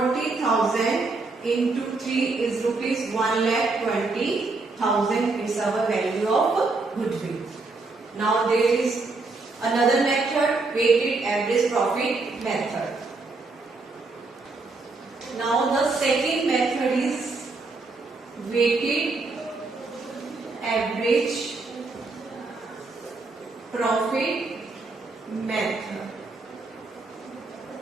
into 3 is rupees 1,20,000. It's our value of goodwill. Now there is another method, weighted average profit method. Now the second method is weighted average profit method.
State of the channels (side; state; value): left; quieter; 3.7 dB